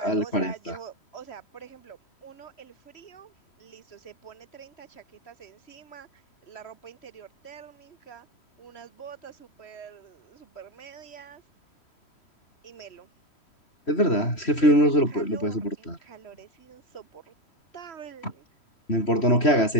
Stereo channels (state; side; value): late; right; 3.1 ms